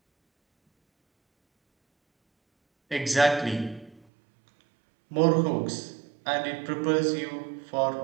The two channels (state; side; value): drops out; left; at 4.0 s